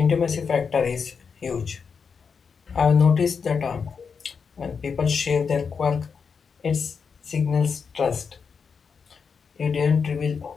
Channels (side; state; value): right; quieter; 5.9 dB